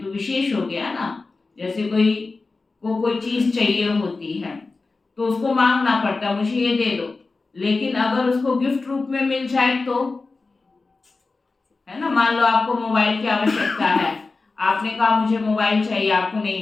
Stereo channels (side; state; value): right; quieter; 3.8 dB